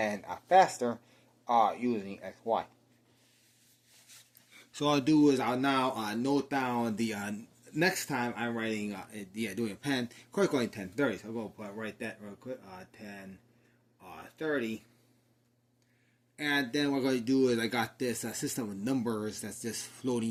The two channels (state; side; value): identical; both; correlation 1.00